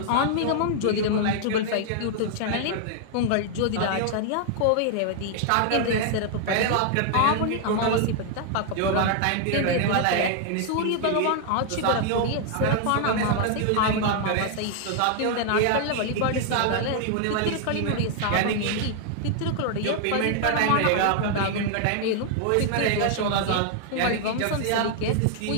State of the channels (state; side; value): different; both; correlation 0.00